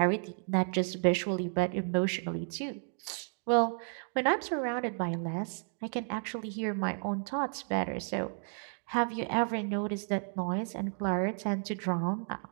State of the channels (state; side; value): silent; left; 56 dB below the other